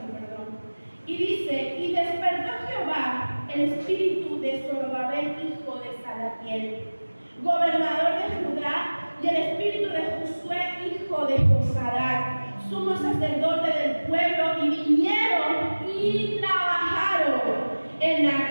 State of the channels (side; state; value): both; inverted; correlation -1.00